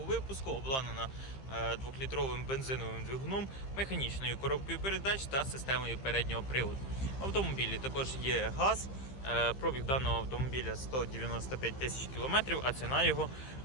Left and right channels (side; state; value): right; late; 15 ms